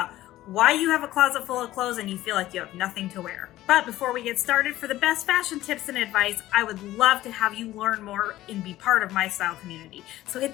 why you have a closet full of clothes and you feel like you have nothing to wear. But before we get started, for the best fashion tips and advice, I would love to have you learn more and be part of my style community. So hit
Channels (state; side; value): quieter; right; 15.3 dB